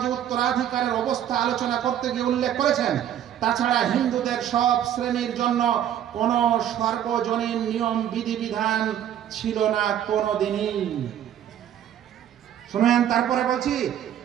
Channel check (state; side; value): quieter; left; 10.5 dB